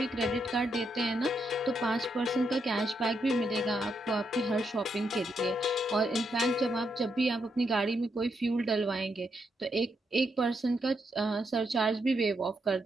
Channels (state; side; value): normal; both; correlation 0.80